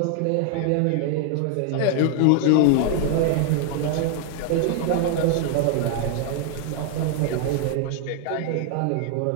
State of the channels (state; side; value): different; both; correlation 0.00